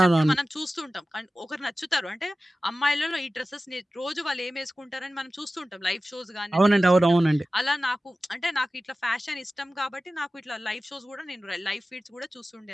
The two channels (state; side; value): normal; both; correlation 0.96